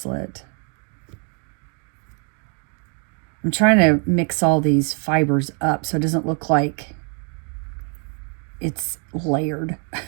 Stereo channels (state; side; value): quieter; left; 36.5 dB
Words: I'm trying to mix all these fibers up so it doesn't look like it's layered.